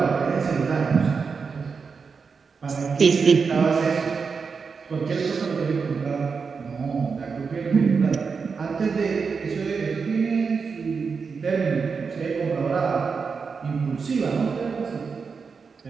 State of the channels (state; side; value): quieter; left; 5.3 dB